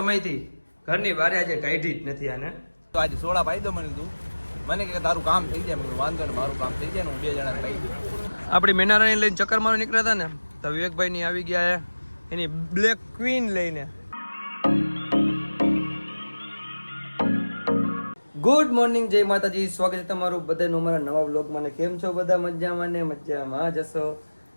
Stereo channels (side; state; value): both; inverted; correlation -1.00